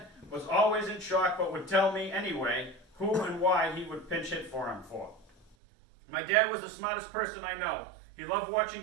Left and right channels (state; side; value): drops out; left; at 5.6 s